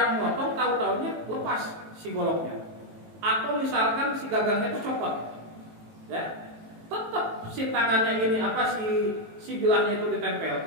memotong tahu-tahunya lepas si goloknya, atau misalkan si gagangnya itu copot, ya tetap si tangannya ini si bilahnya itu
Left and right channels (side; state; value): left; late; 18 ms